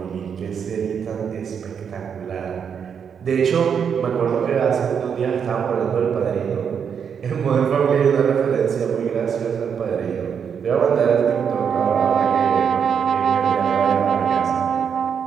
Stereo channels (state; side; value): quieter; left; 7.3 dB